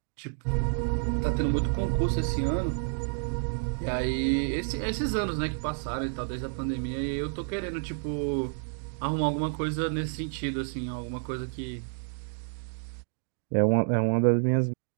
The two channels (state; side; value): silent; left; digital silence